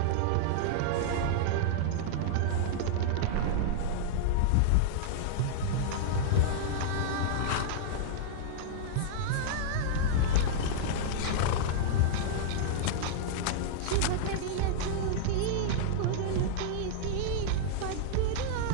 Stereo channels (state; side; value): different; both; correlation -0.02